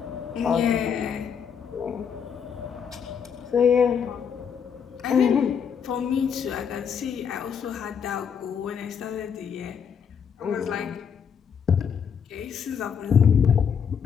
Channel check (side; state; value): right; quieter; 7.2 dB